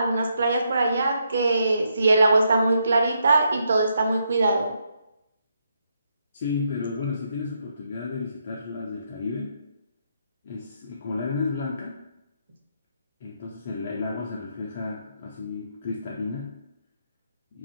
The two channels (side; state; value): both; inverted; correlation -0.78